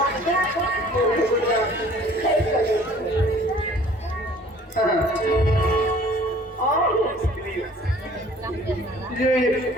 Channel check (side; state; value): both; normal; correlation 0.52